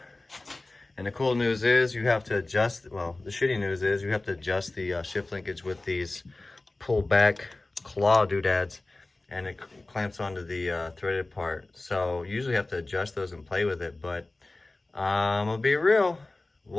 And the cool news is you have to adjust, well, the shitty news is you have to adjust the shift linkage with these pull back claw doodads, and it clamps onto the threaded part. So you usually have to adjust those and play with it, but I'm gonna be real,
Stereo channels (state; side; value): quieter; right; 3.0 dB